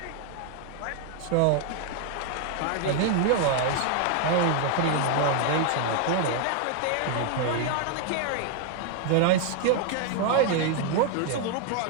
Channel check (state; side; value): different; both; correlation 0.00